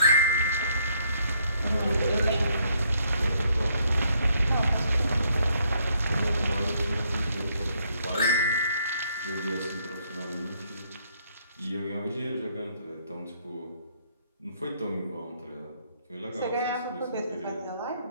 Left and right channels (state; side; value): inverted; both; correlation -0.70